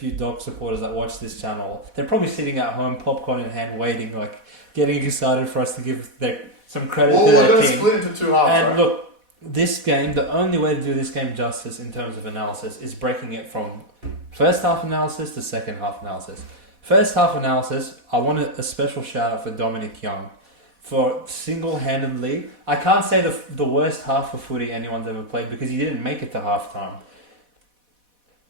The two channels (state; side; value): late; left; 4.1 ms